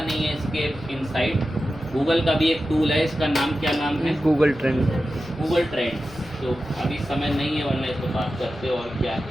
है इसके इनसाइट। गूगल का भी एक टूल है, इसका नाम क्या नाम है? Google trend. Google trends. तो अभी समय नहीं है, वरना इस पर बात करते और क्या है।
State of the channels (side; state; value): right; noise; rumble, 20 dB below the sound